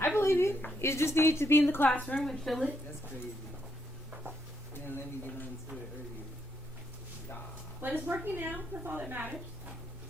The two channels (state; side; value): normal; both; correlation 0.77